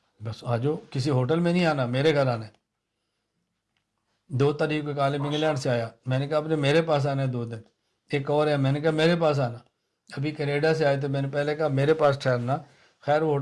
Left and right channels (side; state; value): both; identical; correlation 1.00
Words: بس آ جاؤ، کسی ہوٹل میں نہیں آنا، میرے گھر آنا ہے۔ 2 تاریخ کو ایک عالم انگلینڈ سے آیا، میں نے کہا آپ نے میرے پاس آنا ہے 2 دن۔ ایک اور ہے، میں نے کہا میرے پاس آنا۔ ابھی کینیڈا سے آئے تو میں نے پہلے کہا میرے پاس ٹھہرنا، خیر وہ